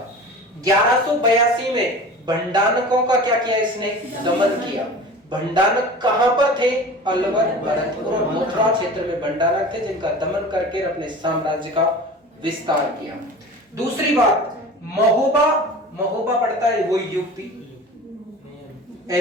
1182 में भंडानकों का क्या किया? इसने दमन किया। भंडानक कहां पर थे? अलवर, भरतपुर और मथुरा क्षेत्र में भंडानक थे, जिनका दमन करके अपने साम्राज्य का विस्तार किया। दूसरी बात, महोबा पड़ता है वो यूपी,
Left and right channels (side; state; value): both; normal; correlation 0.37